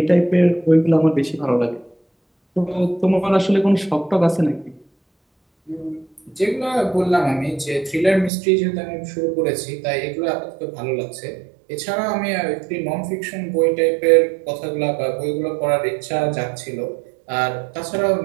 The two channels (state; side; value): drops out; left; at 8.3 s